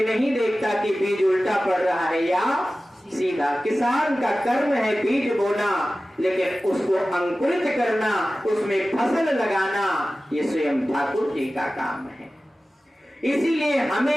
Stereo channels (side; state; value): both; normal; correlation 0.96